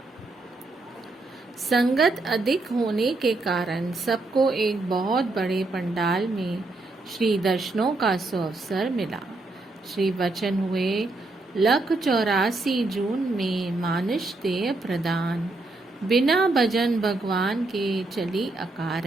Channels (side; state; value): left; quieter; 3.1 dB